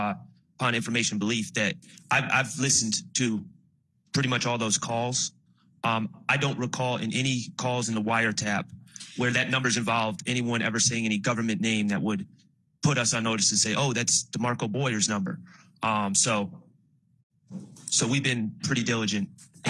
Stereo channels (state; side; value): identical; both; correlation 1.00